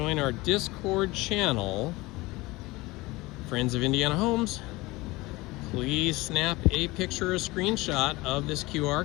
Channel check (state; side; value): quieter; right; 21.5 dB